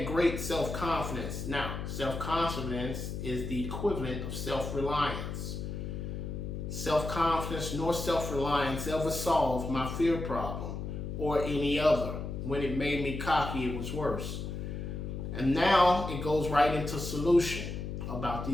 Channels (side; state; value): left; noise; hum, 5 dB below the sound